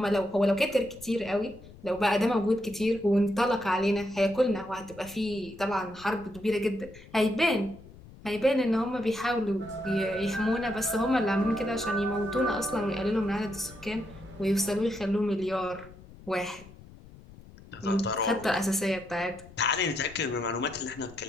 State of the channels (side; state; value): left; noise; rumble, 20 dB below the sound